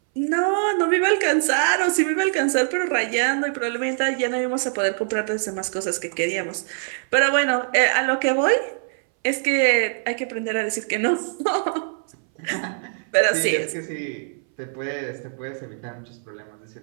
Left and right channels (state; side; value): silent; left; 61 dB below the other